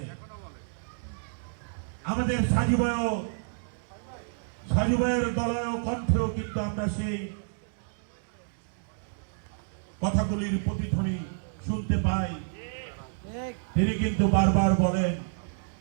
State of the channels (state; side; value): silent; left; digital silence